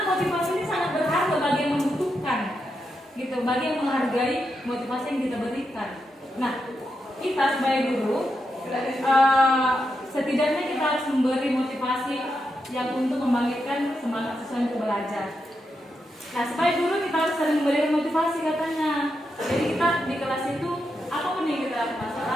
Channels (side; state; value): both; normal; correlation 0.85